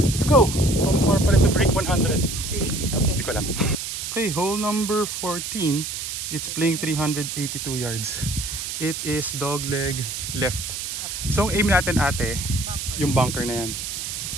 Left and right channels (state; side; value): noise; right; hiss, 5 dB below the sound